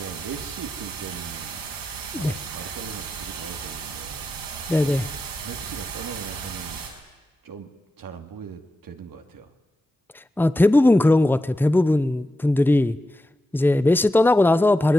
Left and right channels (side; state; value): both; normal; correlation 0.91